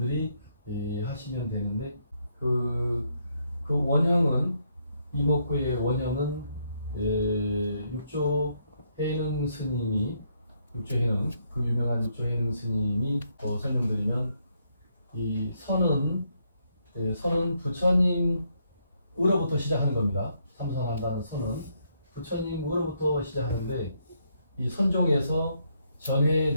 하시면 되는데 그 원형은 이먹고의 원형은 육조 해능 스님이 육조해능 그 유명한 육조해능 스님이 설명드리면 이 선은 부처님으로부터 시작하는 겁니다. 삼선한다는 선은 부처님으로부터 시작하는데 이 선종에서 전해에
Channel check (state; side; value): inverted; both; correlation -0.75